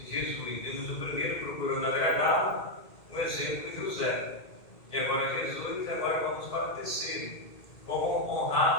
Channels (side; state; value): right; late; 2.3 ms